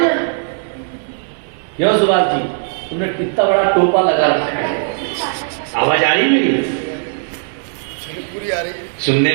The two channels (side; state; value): left; silent; 68 dB below the other